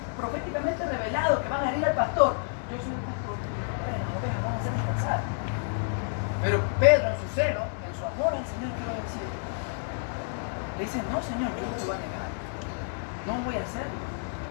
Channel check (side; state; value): right; silent; 58 dB below the other